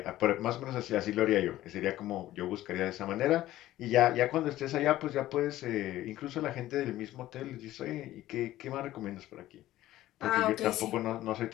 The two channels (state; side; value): quieter; right; 14.9 dB